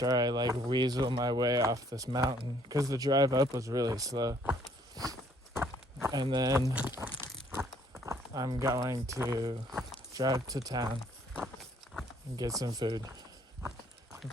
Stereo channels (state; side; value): normal; both; correlation 0.63